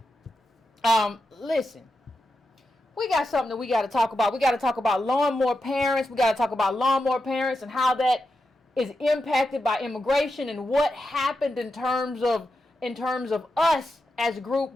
Listen. We got something that we got to talk about. We got to talk about lawnmower parents. We got to talk about lawnmower parents and how that is impacted by immigration and what happened in terms of us as a group.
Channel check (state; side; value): normal; both; correlation 0.88